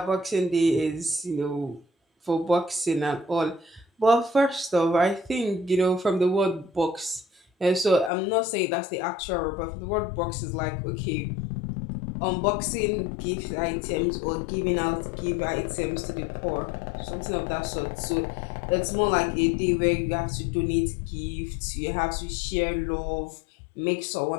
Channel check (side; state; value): right; drops out; at 8.1 s